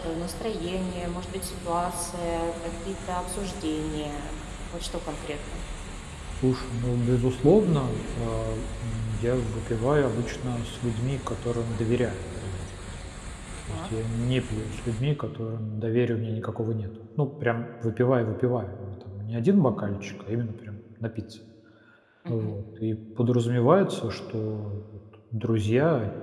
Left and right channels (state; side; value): identical; both; correlation 1.00